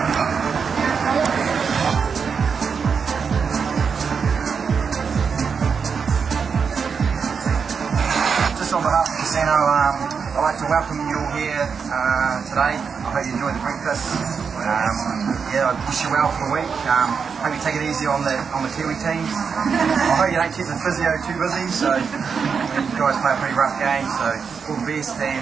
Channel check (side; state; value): left; quieter; 6.0 dB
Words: Just on behalf of the casino, I'd like to welcome you all here today. I hope you enjoyed the breakfast. I wish you well for the week. Hope you take it easy on the Kiwi teams. I hope you don't keep the physio too busy. So you guys play a pretty rough game. So all the best